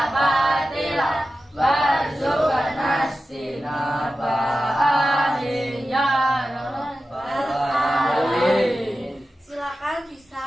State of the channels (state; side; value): normal; both; correlation 0.93